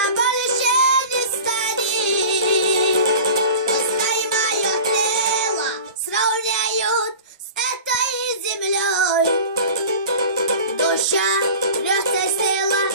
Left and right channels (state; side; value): inverted; both; correlation -0.37